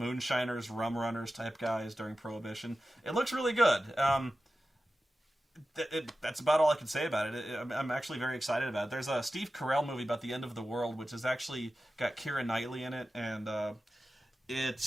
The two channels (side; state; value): both; normal; correlation 0.94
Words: rum runners type guys during Prohibition. It looks really good. That's about all I can say about it. I'm actually very excited about it. There's a Steve Carell movie about the end of the world, which has actually got Keira Knightley in it, and